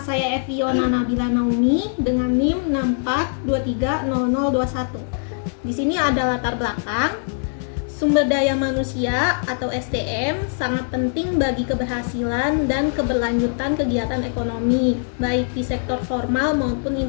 Eviona Nabila Naomi dengan NIM 64230021. Di sini ada latar belakang. Sumber daya manusia atau SDM sangat penting bagi keberhasilan dan keberlanjutan kegiatan ekonomi, baik di sektor formal maupun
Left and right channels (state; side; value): silent; right; digital silence